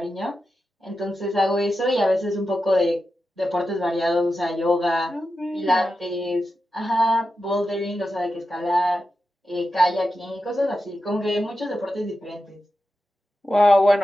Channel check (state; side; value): normal; both; correlation 0.90